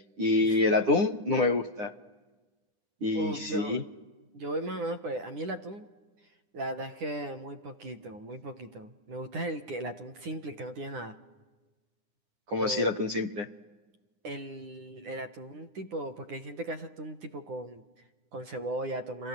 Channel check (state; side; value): late; left; 9.8 ms